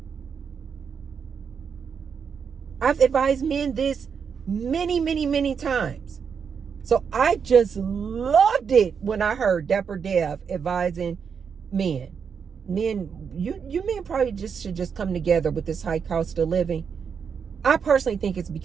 I've advised men this many times. So I just loved it when I heard Dapper Dev advising men. You men probably should just come together with this high cost of living. I personally think it's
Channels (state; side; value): quieter; left; 6.6 dB